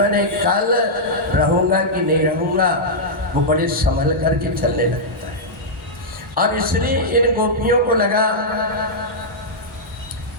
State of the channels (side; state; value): both; normal; correlation -0.09